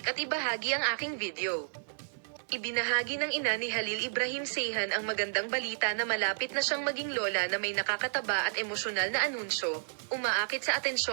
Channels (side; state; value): left; silent; digital silence